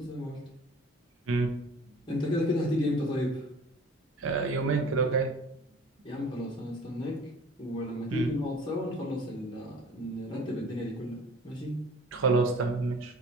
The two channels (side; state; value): both; normal; correlation 0.47